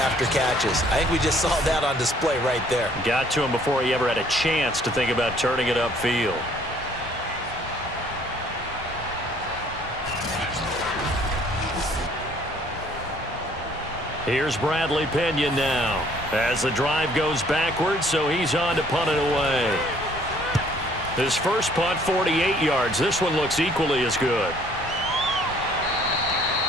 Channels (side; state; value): both; normal; correlation 0.60